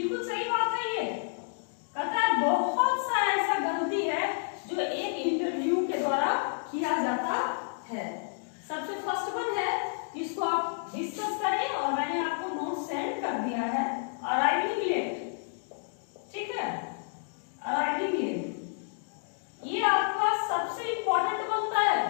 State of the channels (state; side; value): silent; right; digital silence